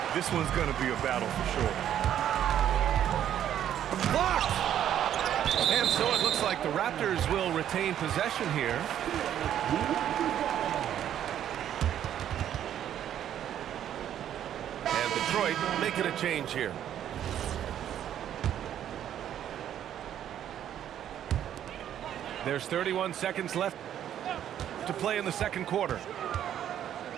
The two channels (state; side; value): quieter; left; 10.5 dB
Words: This one's going to be a battle for sure. Blocked! And so it looks like the Raptors will retain possession here. And Detroit making a change here. There's 31 seconds left to play in the second quarter.